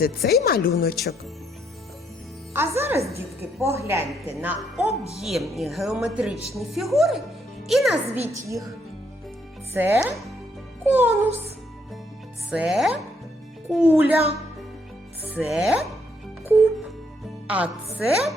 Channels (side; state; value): both; normal; correlation 0.73